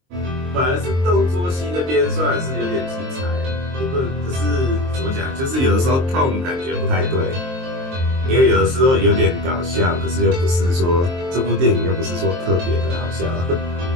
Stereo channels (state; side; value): late; left; 23 ms